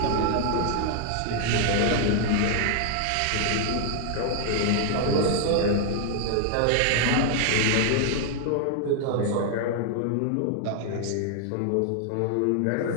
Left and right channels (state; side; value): different; both; correlation 0.00